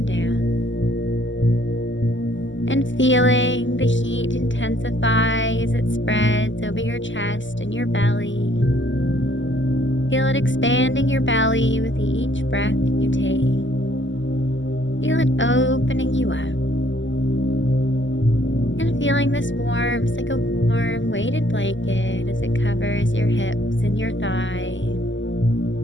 down. And feeling the heat intensify as it spreads over your chest and your belly. Feel it expanding your belly with each breath that you take. Feel it opening you up. And feeling this warmth like a warm weighted blanket as it covers your hips and your thighs,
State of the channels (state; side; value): late; right; 0.54 ms